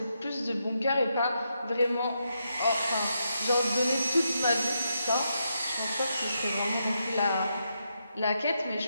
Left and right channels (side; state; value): both; inverted; correlation -0.82